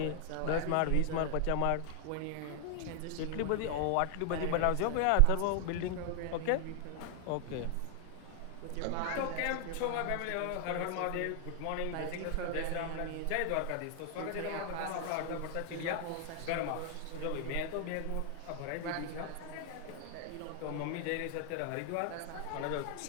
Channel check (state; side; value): different; both; correlation 0.00